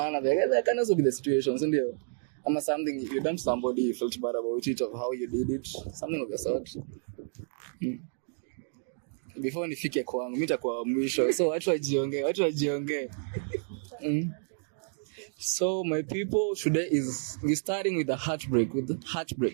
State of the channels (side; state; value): left; silent; 57 dB below the other